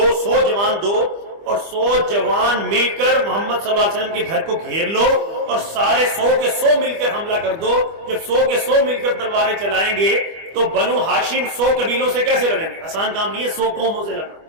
100 جوان دو, اور 100 جوان مل کر محمد صلی اللہ علیہ وسلم کے گھر کو گھیر لو, اور سارے 100 کے 100 مل کر حملہ کر دو. جب 100 کے 100 مل کر تلواریں چلائیں گے تو بنو ہاشم 100 قبیلوں سے کیسے لڑیں گے, آسان کام نہیں ہے 100 قوموں سے لڑنا,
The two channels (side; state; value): left; late; 25 ms